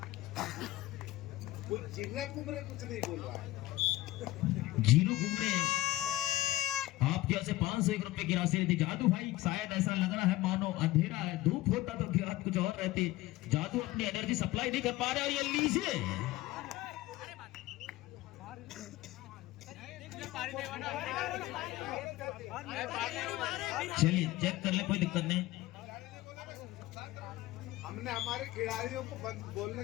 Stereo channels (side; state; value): right; quieter; 17.2 dB